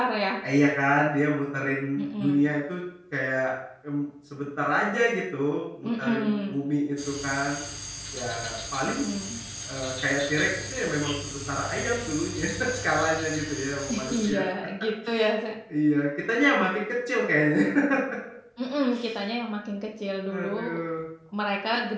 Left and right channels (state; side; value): identical; both; correlation 1.00